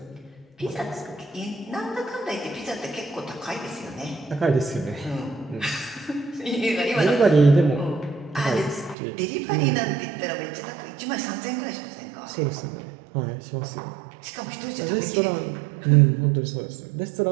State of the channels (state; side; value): drops out; left; at 9.0 s